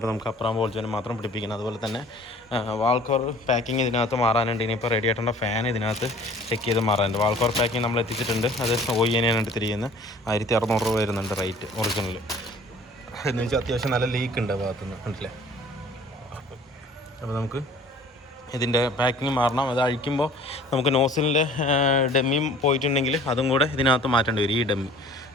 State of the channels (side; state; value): both; normal; correlation 0.49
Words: നമുക്ക് അപ്പുറം ബോൾ ജോയിൻറ്റ് മാത്രം പിടിപ്പിക്കണം. അതുപോലെ തന്നെ വാൾക്കോർ പാക്കിങ് ഇതിനകത്ത് മാറാനുണ്ട്. ഇനിയിപ്പോൾ റേഡിയേറ്ററിൻ്റെ ഫാൻ ഇതിനകത്ത് ചെക്ക് ചെയ്ത് മാറാനുണ്ട്. വാൾക്കോർ പാക്കിങ് നമ്മൾ എത്തിച്ചിട്ടുണ്ട്. അത് OEN എടുത്തിരിക്കുന്നത് 1,600 രൂപ വരുന്നുണ്ട് റേറ്റ് ഒറിജിനൽ. എന്ന് വെച്ചാൽ അത്യാവശ്യം നല്ല ലീക്ക് ഉണ്ട് ഭാഗത്തുനിന്ന്, കണ്ടില്ലേ. അപ്പോൾ നമുക്ക് ഇതിൻ്റെ പാക്കിങ് മാറണം. അത് അഴിക്കുമ്പോൾ നമുക്ക് നോസിലിൻ്റെ ഡെമ്മിയും പോയിട്ടുണ്ടെങ്കിൽ അതും കൂടെ ഇതിനകത്ത് മാറ്റേണ്ടി വരും. ഈ